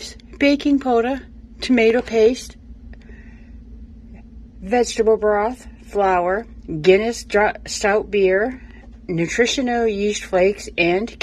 baking soda, tomato paste, vegetable broth, flour, Guinness stout beer, nutritional yeast flakes, and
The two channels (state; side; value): identical; both; correlation 1.00